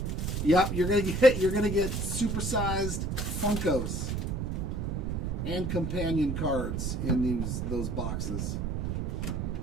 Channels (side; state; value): right; noise; rumble, 1 dB below the sound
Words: Yep, you're gonna get supersized Funkos and companion cards in those boxes.